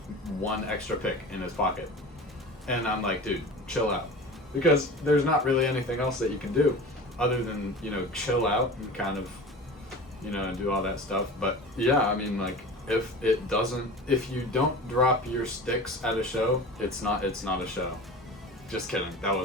1 extra pick in his pocket. And I'm like, dude, chill out. Because there's not really anything else that you can do other than, chill out and kind of, do all that stuff. But yeah, I mean, like, if you don't drop your sticks at a show, it's not a show. Just kidding. That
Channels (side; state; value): both; normal; correlation 0.36